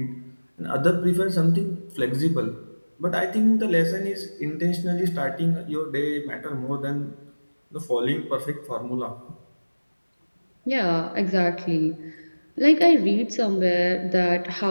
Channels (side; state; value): both; inverted; correlation -1.00